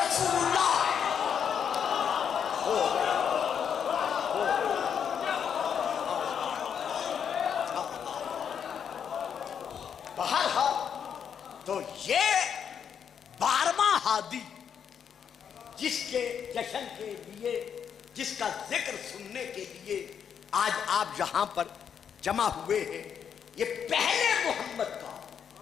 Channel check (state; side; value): quieter; right; 7.8 dB